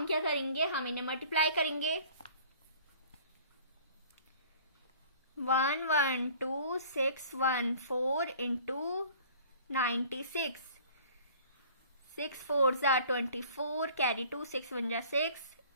क्या करेंगे, हम इन्हें मल्टीप्लाई करेंगे. 112,614 इंटू 96. 6 4 जा 24, कैरी 2, 6 1 जा 6,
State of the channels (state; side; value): inverted; both; correlation -0.50